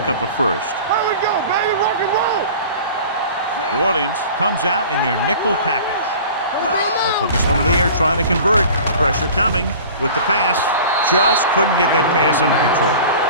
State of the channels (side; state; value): both; inverted; correlation -0.41